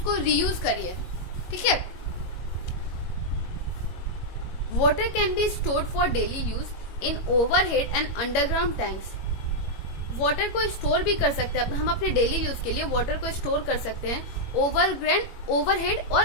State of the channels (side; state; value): right; late; 21 ms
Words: रीयूज करिए। ठीक है। Water can be stored for daily use in overhead and underground tanks. Water को स्टोर भी कर सकते हैं, हम अपने डेली यूज के लिए वाटर को स्टोर कर सकते हैं ओवरहेड और